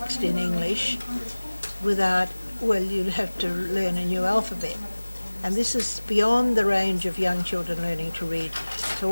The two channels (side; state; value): both; inverted; correlation -1.00